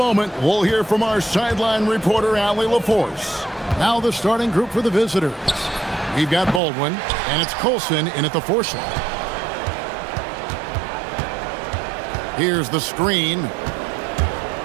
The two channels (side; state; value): left; drops out; at 6.6 s